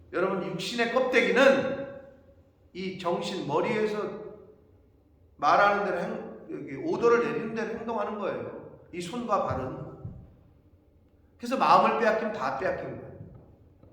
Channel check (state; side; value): identical; both; correlation 1.00